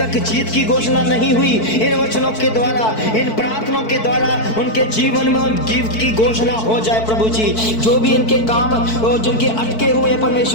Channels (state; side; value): late; right; 4.5 ms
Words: जीत की घोषणा नहीं हुई, इन वचनों के द्वारा, इन प्रार्थनाओं के द्वारा उनके जीवन में जीत की घोषणा हो जाए। प्रभु जी, जो भी इनके काम जिनके अटके हुए हैं,